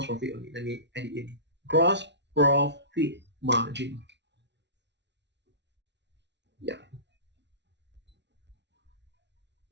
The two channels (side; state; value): left; late; 0.51 ms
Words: profit only. Let me add it in. Gross profit margin. Yeah.